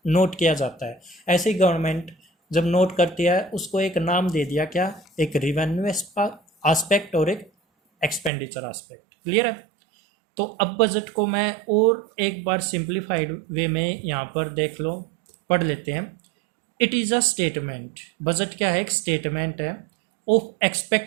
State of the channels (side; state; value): left; drops out; at 8.3 s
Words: नोट किया जाता है। ऐसे ही गवर्नमेंट जब नोट करती है उसको एक नाम दे दिया, क्या, एक रिवेन्यू एस्पेक्ट और एक एक्सपेंडिचर एस्पेक्ट। क्लियर है। तो अब बजट को मैं और एक बार सिंप्लीफाइड वे में यहाँ पर देख लो, पढ़ लेते हैं। It is a statement, budget क्या है, एक स्टेटमेंट है ऑफ